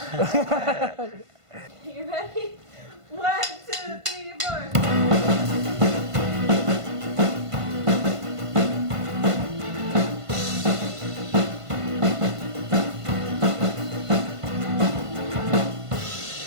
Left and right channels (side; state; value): left; late; 1.5 ms